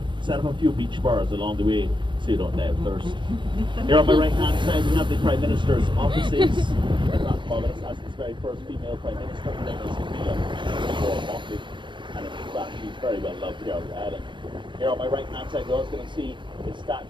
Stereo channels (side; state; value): left; late; 0.23 ms